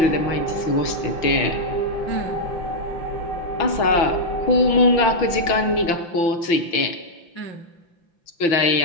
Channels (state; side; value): late; right; 5.8 ms